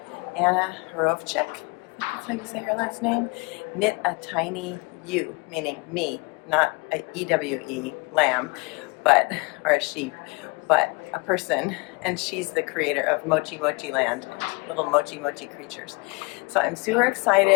Anna Hrachovec, I think that's how you say her last name. Knit a tiny ewe, meaning me, not a EWE, lamb, but, or a sheep, but a person, and she's the creator of Mochi Mochi Land and little Mochi Mochi creatures. So I'm super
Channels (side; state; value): right; quieter; 28.3 dB